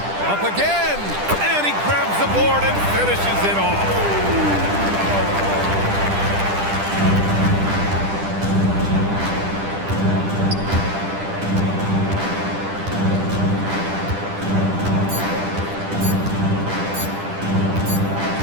Up again, and he grabs the board and finishes it off.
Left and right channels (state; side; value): late; left; 10 ms